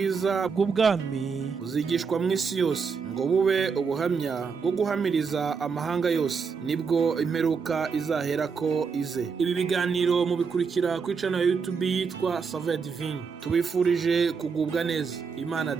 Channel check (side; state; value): left; quieter; 5.5 dB